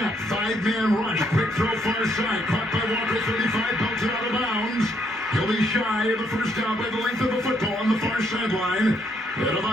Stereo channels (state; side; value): normal; both; correlation 0.72